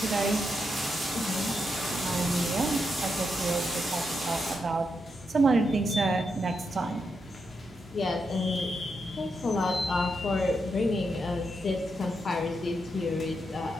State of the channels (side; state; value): both; normal; correlation 0.83